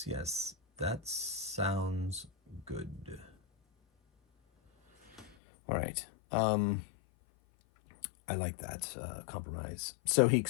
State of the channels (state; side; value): drops out; right; at 5.4 s